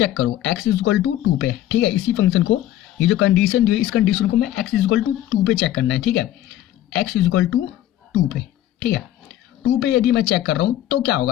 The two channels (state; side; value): quieter; right; 13.2 dB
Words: करो, x इज इक्वल टू 2 पे, ठीक है, इसी फंक्शन को, ये जो कंडीशन दी है इस कंडीशन को मैं x इज इक्वल टू 2 पे चेक करना है, ठीक है, x इज इक्वल टू 2 पे, ठीक है, 2 पे यदि मैं चेक कर रहा हूं तो क्या